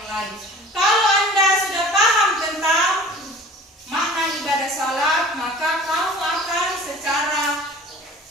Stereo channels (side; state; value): both; normal; correlation 0.44